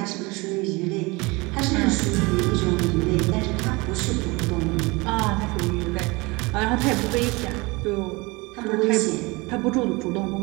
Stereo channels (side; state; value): left; quieter; 24.8 dB